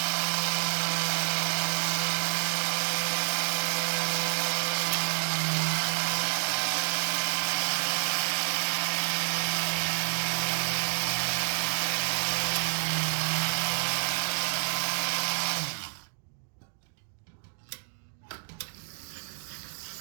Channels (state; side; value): silent; left; 59 dB below the other